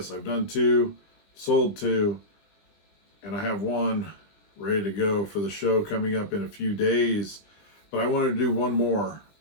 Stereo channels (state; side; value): late; right; 20 ms